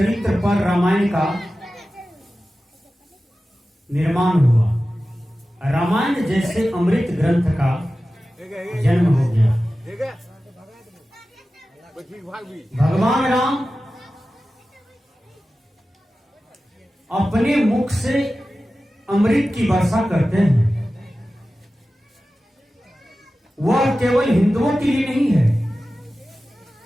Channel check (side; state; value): both; normal; correlation 0.95